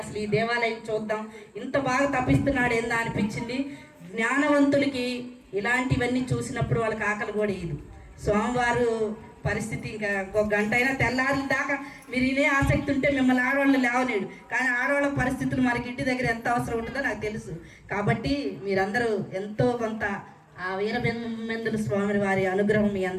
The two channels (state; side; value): identical; both; correlation 1.00